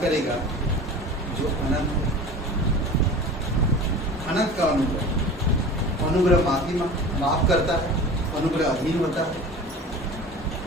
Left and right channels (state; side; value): normal; both; correlation 0.37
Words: करेगा जो अनंत है। अनंत का अनुग्रह। अनुग्रह माफ करता है, अनुग्रह अधीन होता है,